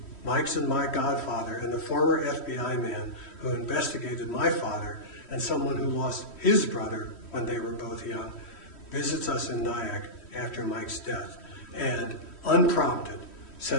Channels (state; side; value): late; right; 3.1 ms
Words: Mike's and my godfather, and the former FBI man who investigated my father and someone who lost his brother when they were both young, visits us in Nyack after Mike's death and, unprompted,